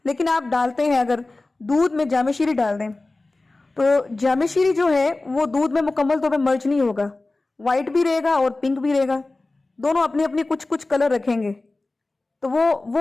لیکن آپ ڈالتے ہیں اگر دودھ میں جامع شیری ڈال دیں تو جامع شیری جو ہے وہ دودھ میں مکمل طور پہ مرج نہیں ہوگا، وائٹ بھی رہے گا اور پنک بھی رہے گا، دونوں اپنے اپنے کچھ کلر رکھیں گے، تو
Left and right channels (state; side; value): quieter; right; 3.1 dB